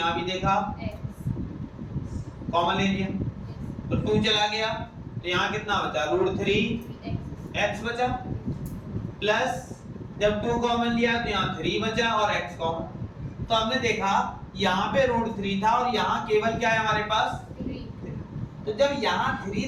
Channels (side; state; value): both; identical; correlation 1.00